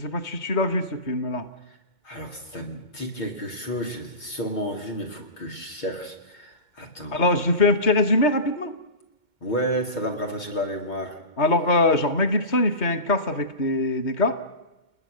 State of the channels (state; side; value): late; right; 2.2 ms